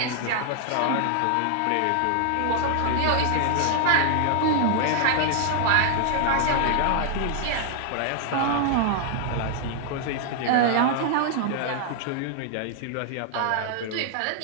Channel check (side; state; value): both; different; correlation 0.00